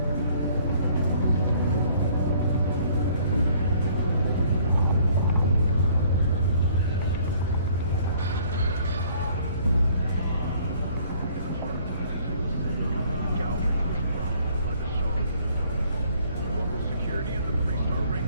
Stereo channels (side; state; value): both; inverted; correlation -0.59